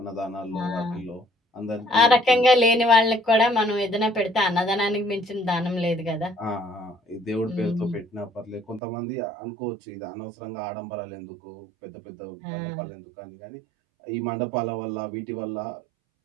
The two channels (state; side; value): drops out; left; at 8.8 s